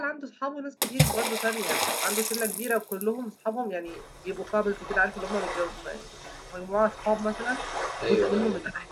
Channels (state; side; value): identical; both; correlation 1.00